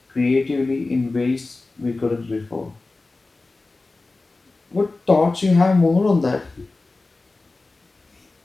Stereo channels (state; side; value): quieter; right; 3.4 dB